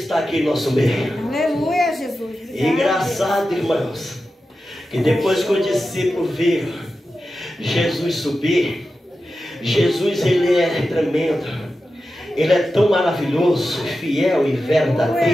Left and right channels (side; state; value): both; normal; correlation 0.92